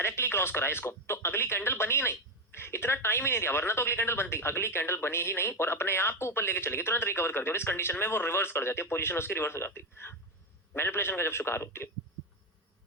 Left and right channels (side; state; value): both; normal; correlation 0.11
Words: क्रॉस करा इसको, तो अगली कैंडल बनी ही नहीं, इतना टाइम ही नहीं दिया, वरना तो अगली कैंडल बनती। अगली कैंडल बनी ही नहीं और अपने आप को ऊपर लेके चलेगी, तुरंत रिकवर कर दिया, और इस कंडीशन में वो रिवर्स कर जाती है, पोजीशन उसकी रिवर्स हो जाती है, मैनिपुलेशन का जब शिकार होती है।